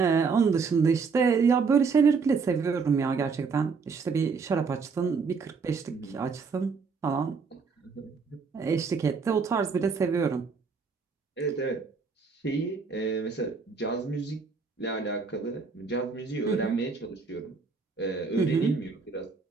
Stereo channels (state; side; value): quieter; left; 5.1 dB